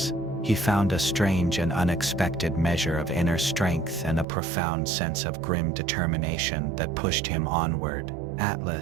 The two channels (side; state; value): left; drops out; at 4.2 s